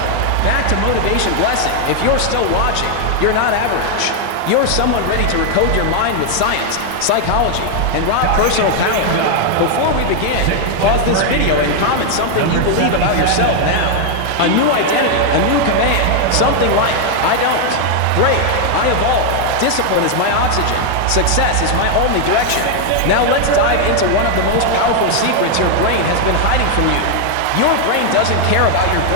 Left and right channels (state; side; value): different; both; correlation 0.00